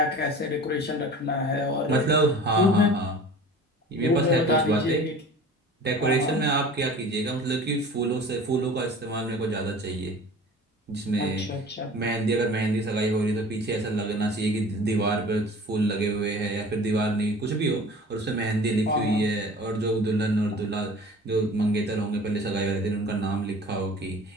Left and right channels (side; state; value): both; normal; correlation 0.42